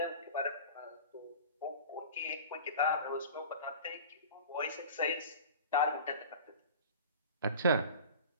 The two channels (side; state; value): both; inverted; correlation -0.38